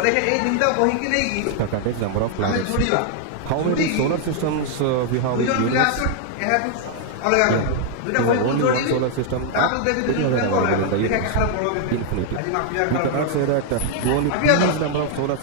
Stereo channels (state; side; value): different; both; correlation 0.00